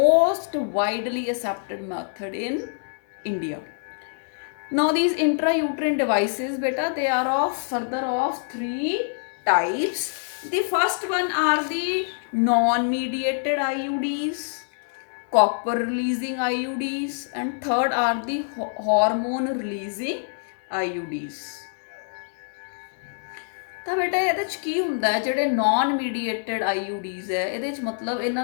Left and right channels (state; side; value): silent; right; digital silence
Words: widely accepted method in India. Now these intrauterine devices, beta, they are of 3 types. The first one are the non-mediated IUDs, copper releasing IUDs, and third are the hormone releasing IUDs. ਤਾਂ ਬੇਟਾ ਇਹਦੇ 'ਚ ਕੀ ਹੁੰਦਾ ਹੈ, ਜਿਹੜੇ non ਮੀਡੀਏਟਡ IUDs ਹੈ, ਇਹਦੇ 'ਚ ਮਤਲਬ